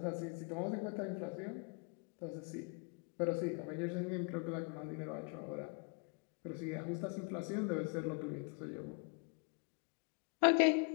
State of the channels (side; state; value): right; quieter; 35.5 dB